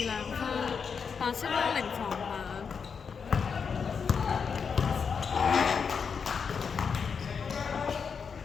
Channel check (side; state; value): right; quieter; 6.1 dB